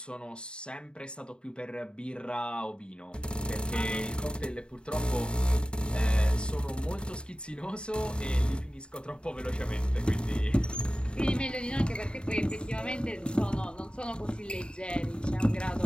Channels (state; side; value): late; right; 0.052 ms